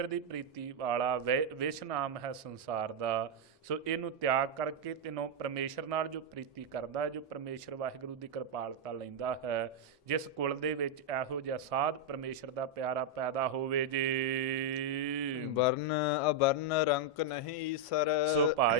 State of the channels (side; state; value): both; normal; correlation 0.00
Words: ਦੀ ਪ੍ਰੀਤੀ ਵਾਲਾ ਵਿਸ਼ ਨਾਮ ਹੈ ਸੰਸਾਰ ਦਾ, ਸੋ ਇਹਨੂੰ ਤਿਆਗ ਕਰਕੇ ਤੈਨੂੰ ਪਰਮੇਸ਼ਰ ਨਾਲ ਜੋ ਪ੍ਰੀਤੀ ਕਰਦਾ, ਜੋ ਪਰਮੇਸ਼ਰ ਵਾਹਿਗੁਰੂ ਦੀ ਕਿਰਪਾਲਤਾ ਲੈਂਦਾ ਹੈ, ਜਿਸ ਕੁਲ ਦੇ ਵਿੱਚ ਇਹੋ ਜਿਹਾ ਸਾਧ ਪਰਮੇਸ਼ਰ ਦਾ ਪਿਆਰਾ ਪੈਦਾ ਹੋਵੇ ਜੀ। ਵਰਨ ਅਵਰਨ ਰੰਕ ਨਹੀਂ ਈਸਰ। ਸੋ